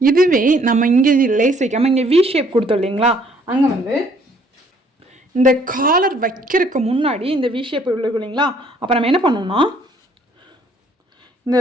இதுவே நம்ம இங்கே லேஸ் வைக்காமல் இங்கே வி ஷேப் கொடுத்தோம் இல்லைங்களா, அங்கே வந்து இந்த காலர் வைக்கிறதுக்கு முன்னாடி இந்த வி ஷேப் இருக்கும் இல்லைங்களா, அப்போ நம்ம என்ன பண்ணோம்னா இந்த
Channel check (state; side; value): normal; both; correlation 0.62